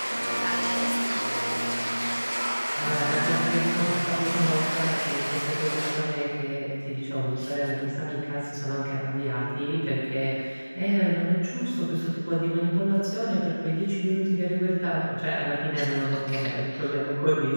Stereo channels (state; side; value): inverted; both; correlation -1.00